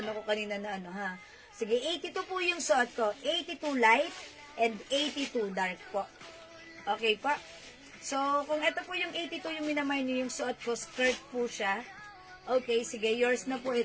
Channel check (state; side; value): identical; both; correlation 1.00